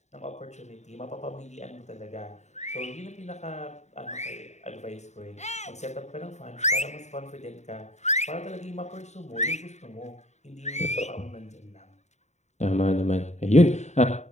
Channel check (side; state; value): right; late; 0.33 ms